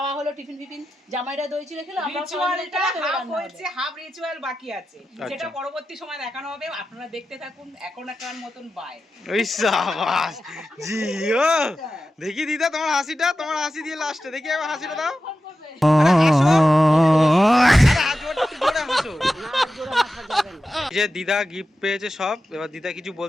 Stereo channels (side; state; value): both; normal; correlation 0.92